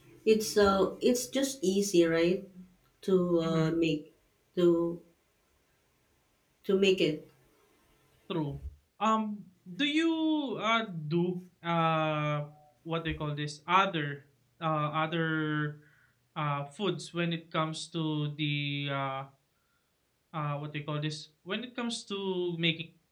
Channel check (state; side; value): identical; both; correlation 1.00